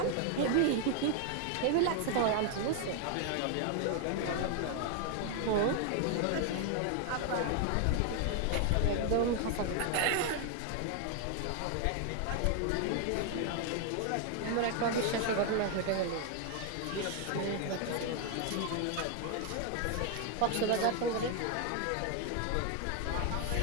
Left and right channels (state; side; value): different; both; correlation 0.00